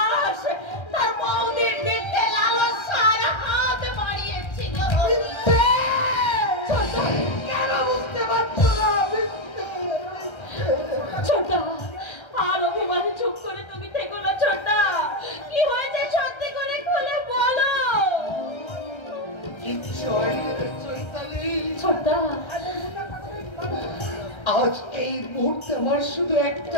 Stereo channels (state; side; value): late; right; 1.3 ms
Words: তার বৌদির দিকে লালসার হাত বাড়িয়েছিল। কেন বুঝতে পারছো না? ছোটা, আর অভিমানে চুপ করে তুমি থেকো না। ছোটা, কি হয়েছে সত্যি করে খুলে বলো। ছোটা, আজ এই মুহূর্তে আমার শুধু